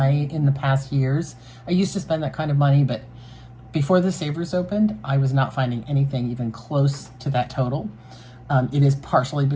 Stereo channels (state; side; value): identical; both; correlation 1.00